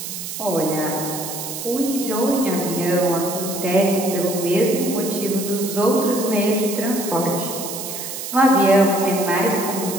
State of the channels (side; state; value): right; noise; hiss, 7 dB below the sound